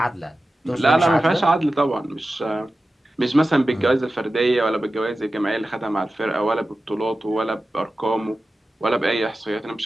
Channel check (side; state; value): both; normal; correlation 0.94